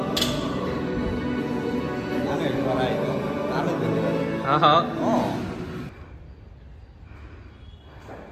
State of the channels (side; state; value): both; identical; correlation 1.00